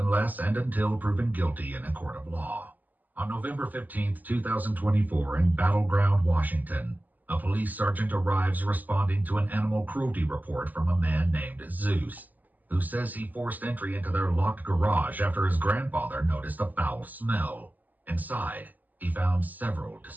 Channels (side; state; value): left; late; 0.083 ms